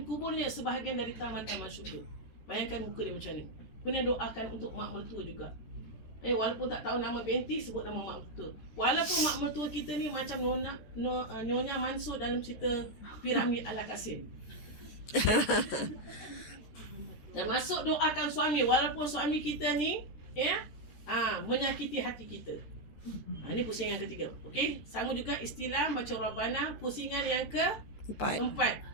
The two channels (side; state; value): right; late; 14 ms